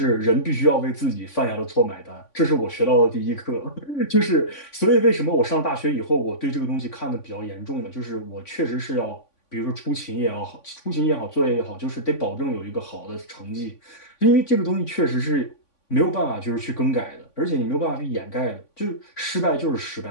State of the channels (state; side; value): late; right; 3.5 ms